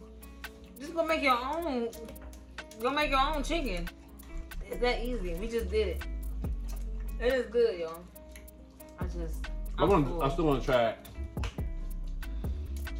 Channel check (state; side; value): identical; both; correlation 1.00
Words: just go make your own. Go make your own chicken. It's that easy. We just did it. It is good, y'all. I still want to try it.